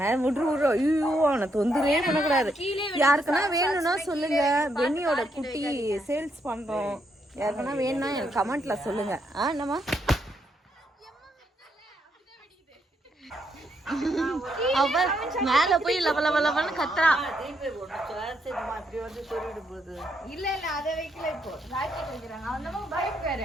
விட்ரு. ஐயோ, அவனை தொந்தரவே பண்ணக்கூடாது. யாருக்குன்னா வேணும்னா சொல்லுங்க. பென்னியோட குட்டி சேல்ஸ் பண்றோம். யாருக்குன்னா வேணும்னா எனக்கு கமெண்ட்ல சொல்லுங்க. என்னம்மா? அவ மேல போய் லவலவலவன்னு கத்துறா. இப்படி வந்து சொல்லிட்டு போகுது. இல்ல அத வைக்கல. இப்போ ராக்கெட் வைக்கிறாங்க. அந்த பைக் வேற.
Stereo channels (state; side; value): normal; both; correlation 0.77